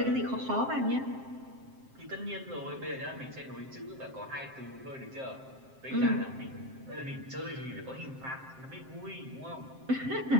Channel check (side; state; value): left; late; 7.6 ms